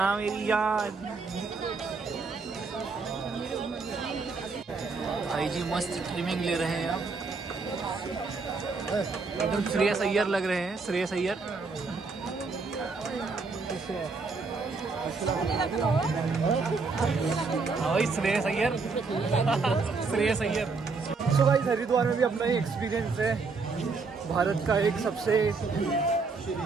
मेरी याद। भाई जी मस्त ट्रिमिंग ले रहे हैं आप, एकदम श्रेयस अय्यर लग रहे हैं, श्रेयस अय्यर। श्रेयस अय्यर, श्रेयस अय्यर। सो गाइस हरिद्वार में भी अपना ही एक्सपीरियंस है। भारत का एक सबसे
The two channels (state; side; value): quieter; left; 4.3 dB